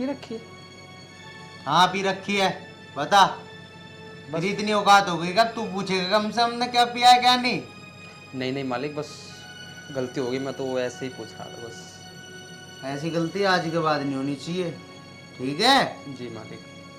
रखी है? हाँ पी रखी है। बता, बस इतनी औकात हो गई कब तू पूछेगा कम से हमने क्या पिया है क्या नहीं? नहीं नहीं मालिक बस गलती हो गई, मैं तो ऐसे ही पूछ रहा था बस। ऐसी गलती आज के बाद नहीं होनी चाहिए, ठीक है? जी मालिक।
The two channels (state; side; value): identical; both; correlation 1.00